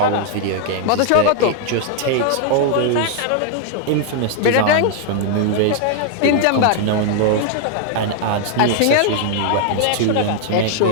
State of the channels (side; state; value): both; different; correlation 0.00